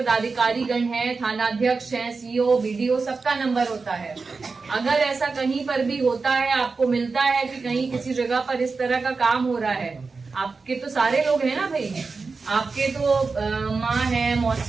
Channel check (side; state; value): left; quieter; 4.3 dB